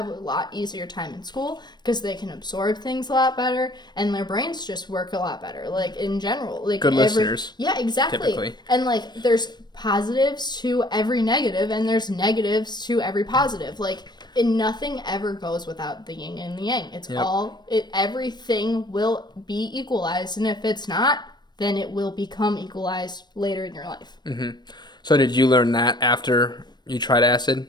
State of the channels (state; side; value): late; right; 0.21 ms